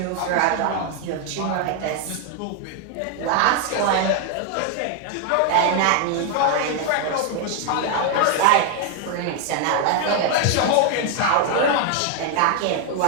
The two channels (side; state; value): both; different; correlation 0.01